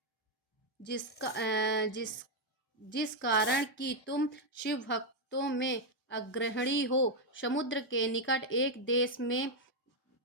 जिस कारण कि तुम शिव भक्तों में अग्रणी हो। समुद्र के निकट एक देश में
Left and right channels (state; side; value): normal; both; correlation 0.01